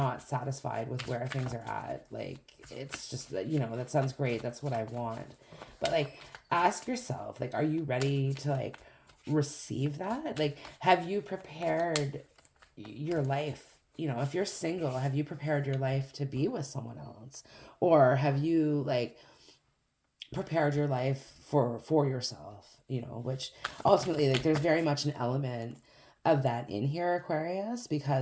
satisfied with where things are at. Like it's just that, you know, that sounds great. That's what I want. But like ask yourself, like, are you ready to like receive that? Like, have you prepared your life? You know, if you're single, have you prepared your life to be with someone else? Or have you like prepared your life for yourself, you know, which ultimately like there's very much an element of that in here, Aquarius,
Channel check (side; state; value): both; identical; correlation 1.00